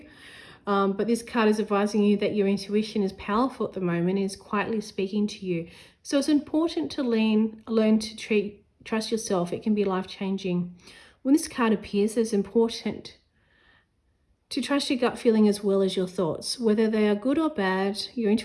but this card is advising you that your intuition is powerful at the moment, is quietly speaking to you. So it's important to learn to trust yourself. It can be life-changing. When this card appears, it's important to trust your gut feeling as well as your thoughts. Whether they are good or bad, your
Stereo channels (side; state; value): both; identical; correlation 1.00